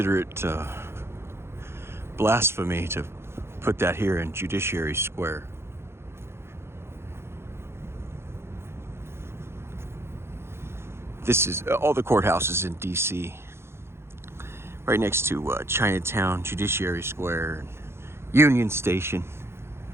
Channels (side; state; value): left; late; 0.12 ms